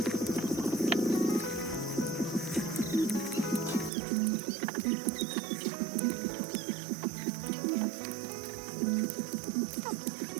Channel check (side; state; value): left; drops out; at 3.9 s